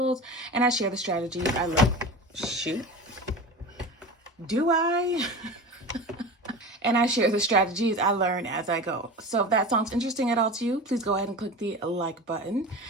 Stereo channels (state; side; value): normal; both; correlation 0.31